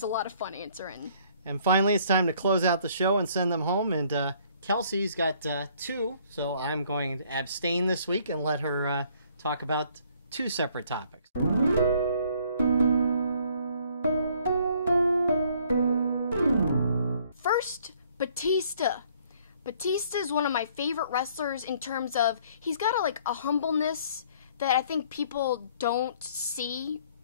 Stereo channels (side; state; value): both; inverted; correlation -0.61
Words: a lot of fun answering. And finally, it's time to close out the show and send them home. And Kelsi's got 2, so I'm going to abstain this week and let her talk about 2 separate topics. First, Batista. Batista is one of my favorite wrestlers in terms of he's got a humbleness that I think people don't see